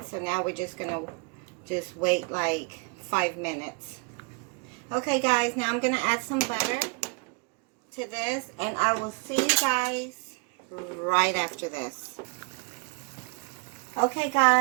so now we're just going to wait like 5 minutes. Okay, guys, now I'm going to add some butter to this, and I will see you guys right after this. Okay,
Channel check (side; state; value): left; quieter; 31.3 dB